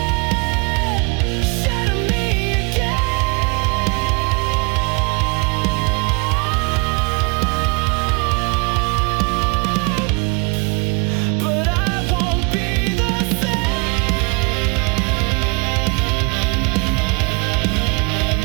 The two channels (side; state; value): left; quieter; 31.2 dB